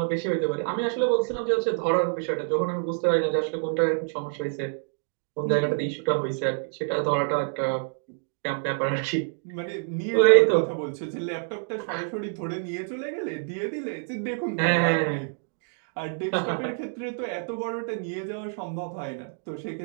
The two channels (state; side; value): silent; left; digital silence